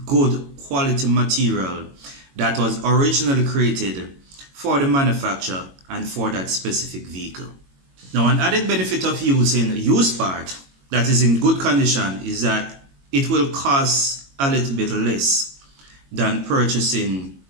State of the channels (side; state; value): left; late; 22 ms